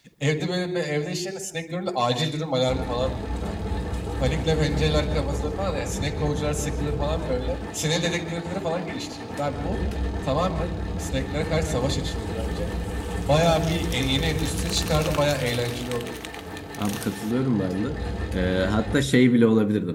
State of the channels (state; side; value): identical; both; correlation 1.00